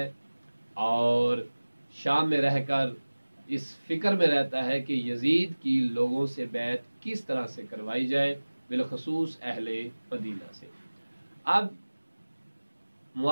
और शाम में रहकर इस फिक्र में रहता है कि यजीद की लोगों से बैत किस तरह से करवाई जाए, बिलखसूस अहले मदीना से। अब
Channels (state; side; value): inverted; both; correlation -1.00